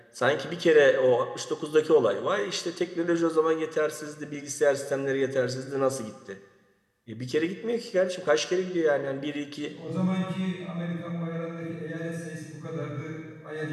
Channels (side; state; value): both; identical; correlation 1.00